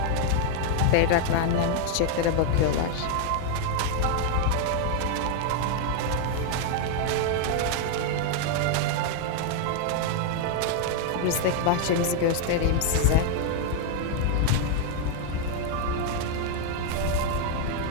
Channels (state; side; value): different; both; correlation 0.00